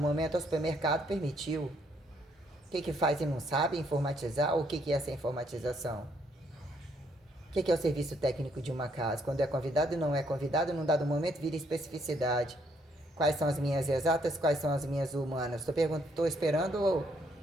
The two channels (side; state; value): both; normal; correlation 0.70